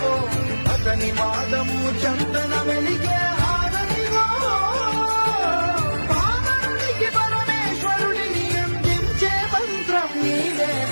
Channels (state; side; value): inverted; both; correlation -1.00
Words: అతని వాదము చందన వెలిగే హారతిలో పావనునికి పరమేశ్వరుడిని అందించే మంత్రం